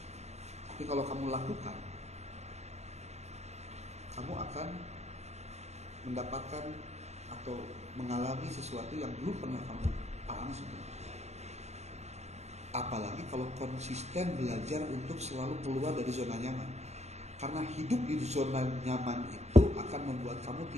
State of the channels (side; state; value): left; late; 0.32 ms